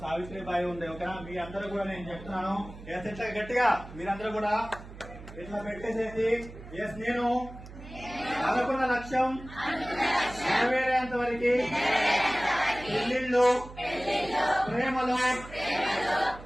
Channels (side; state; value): right; noise; hum, 15 dB below the sound